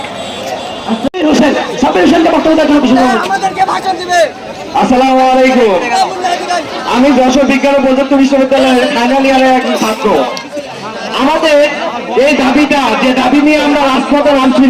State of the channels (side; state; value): both; identical; correlation 1.00